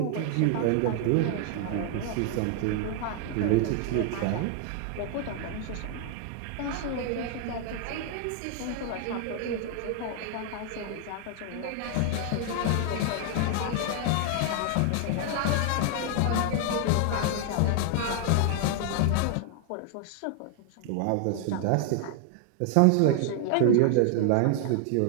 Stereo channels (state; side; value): different; both; correlation 0.00